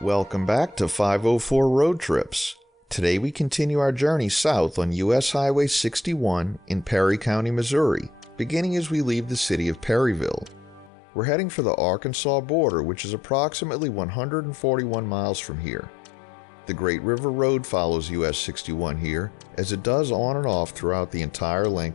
Welcome back to 504 Road Trips. Today we continue our journey south on US Highway 61 in Perry County, Missouri, beginning as we leave the city of Perryville. We're heading for the Arkansas border, which is approximately 141 miles from here. The Great River Road follows US 61 here, as it does on and off throughout the entire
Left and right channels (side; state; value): right; drops out; at 10.9 s